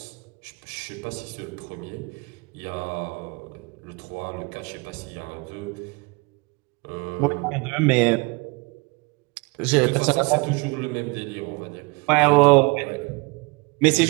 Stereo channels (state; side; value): quieter; left; 27.1 dB